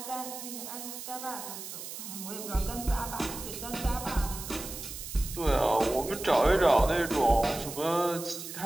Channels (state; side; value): noise; right; hiss, 9 dB below the sound